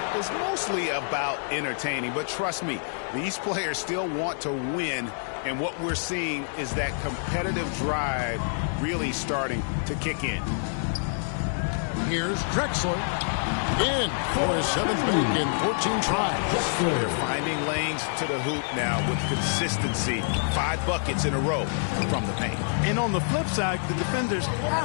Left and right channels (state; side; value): silent; right; digital silence